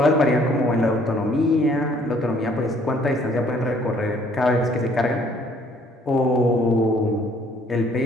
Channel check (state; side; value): normal; both; correlation 0.61